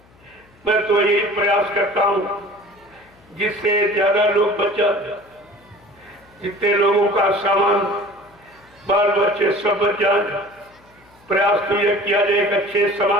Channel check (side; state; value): left; noise; hum, 29 dB below the sound